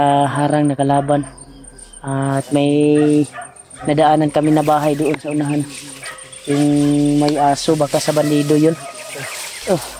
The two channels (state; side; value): identical; both; correlation 1.00